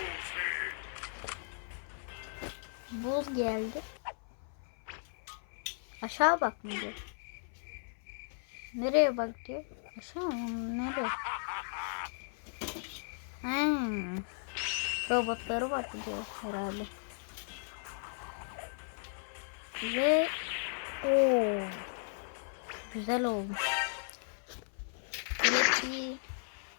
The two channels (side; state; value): right; silent; 54 dB below the other